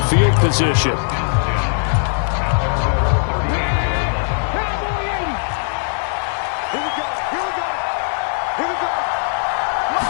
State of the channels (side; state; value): right; silent; digital silence